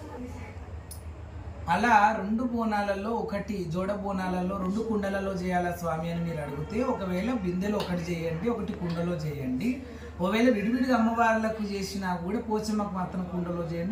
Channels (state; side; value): identical; both; correlation 1.00